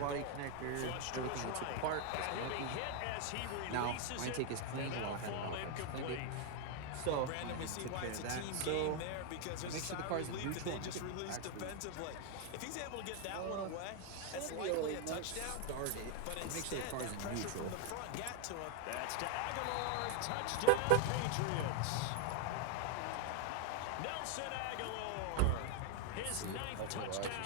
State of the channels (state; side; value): different; both; correlation 0.00